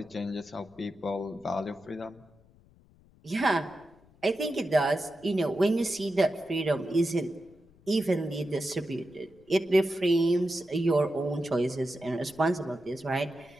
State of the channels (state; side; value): noise; left; rumble, 28 dB below the sound